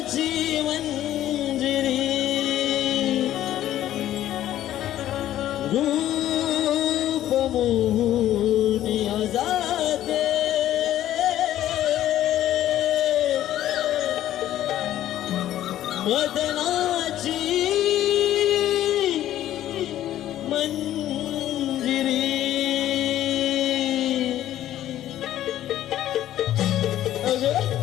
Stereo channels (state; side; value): quieter; right; 12.7 dB